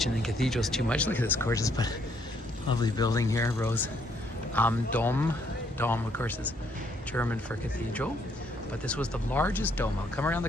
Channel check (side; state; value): both; normal; correlation 0.70